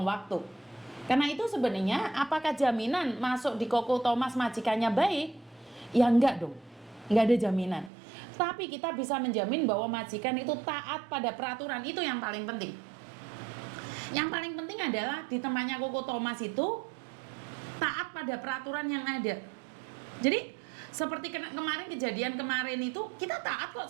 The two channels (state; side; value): drops out; left; at 7.9 s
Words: waktu. Karena itu sebenarnya apakah jaminan masuk di Koko Thomas majikannya baik? Ya enggak dong. Enggak ada jaminan. Tapi kita bisa menjamin bahwa majikan itu taat pada peraturan, itu yang paling penting. Yang paling penting adalah di tempatnya Koko Thomas itu taat pada peraturan yang ada. Jadi seperti kemarin kejadian kemarin itu kita taat kok